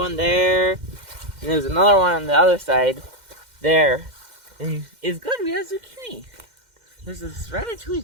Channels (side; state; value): left; late; 2.1 ms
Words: there, and there's another one on the other side, there. And it's good, we have zucchini. There's this